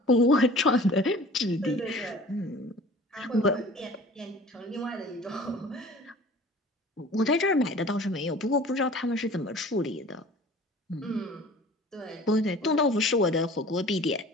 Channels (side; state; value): both; normal; correlation 0.45